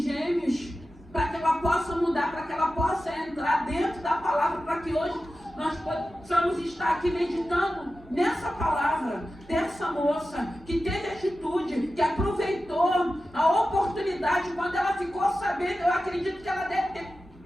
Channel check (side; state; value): both; normal; correlation 0.93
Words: gêmeos, para que ela possa mudar, para que ela possa entrar dentro da palavra, para que hoje nós possamos estar aqui meditando nessa palavra, dessa moça que teve atitude, que aproveitou a oportunidade. Quando ela ficou sabendo, eu acredito que ela deve ter